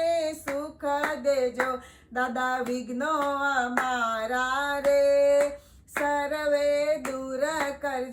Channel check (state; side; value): identical; both; correlation 1.00